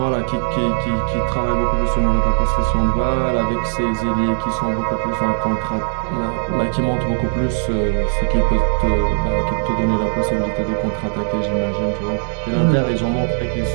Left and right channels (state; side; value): silent; left; 65 dB below the other